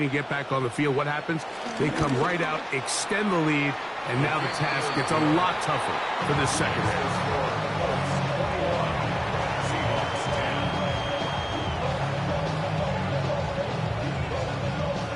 to get back on the field. What happens? They come right out, extend the lead, and now the task gets a lot tougher for this second half.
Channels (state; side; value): identical; both; correlation 1.00